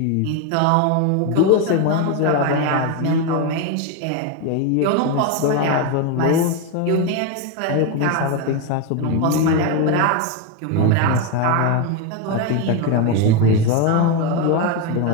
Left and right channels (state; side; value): different; both; correlation 0.03